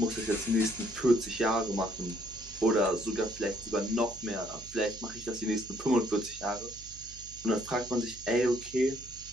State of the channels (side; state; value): right; noise; hum, 18 dB below the sound